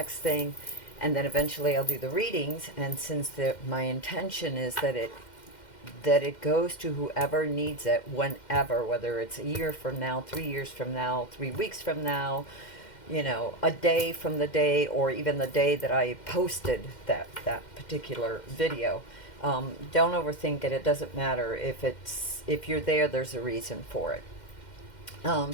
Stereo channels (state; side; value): late; right; 2.1 ms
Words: thing, and then eventually I'll do the readings. And since my intention is that it goes to whoever needs it, whenever, whether it's a year from now, 3 years from now, 3 weeks from now, you know, a day from the day, or even the day that I posted that particular video. Don't overthink it. It doesn't matter if you're there. There's a reason for it.